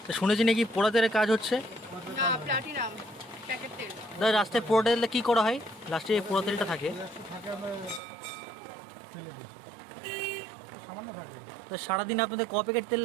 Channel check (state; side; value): drops out; left; at 8.0 s